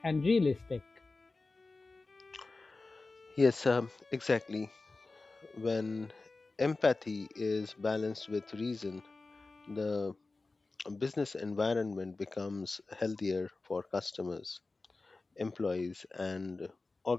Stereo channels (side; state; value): right; quieter; 3.6 dB